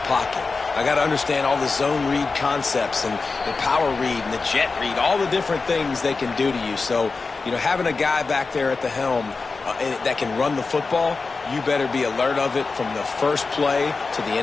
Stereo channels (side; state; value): right; quieter; 4.2 dB